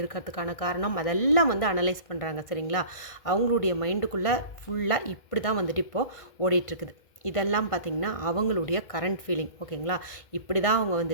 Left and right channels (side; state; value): right; late; 1.6 ms